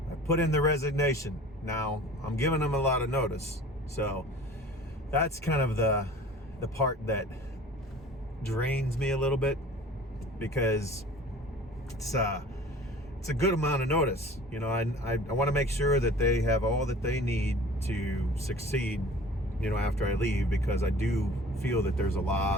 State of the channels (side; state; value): both; normal; correlation 0.45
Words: I put in the resignation. Now, I'm giving him a lot of notice, so that's kind of the part that drains me a little bit, because it's a good amount of notice. You know, I want to make sure that they have all that they need to succeed, you know, after I leave, because I do feel that there's a